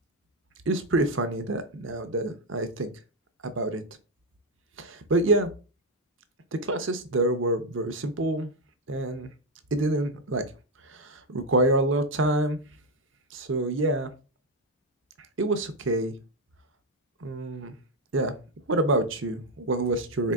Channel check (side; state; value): both; normal; correlation 0.05